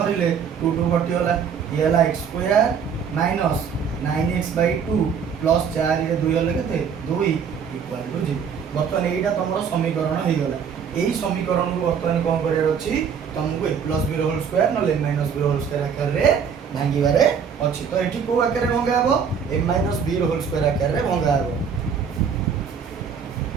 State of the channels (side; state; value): left; quieter; 6.9 dB